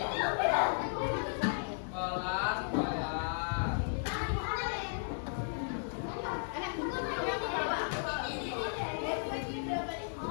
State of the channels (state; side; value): silent; right; digital silence